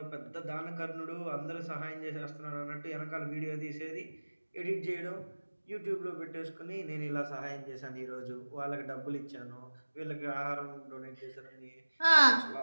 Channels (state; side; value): inverted; both; correlation -1.00